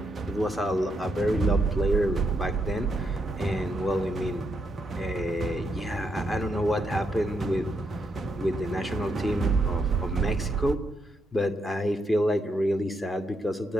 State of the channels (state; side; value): normal; both; correlation 0.79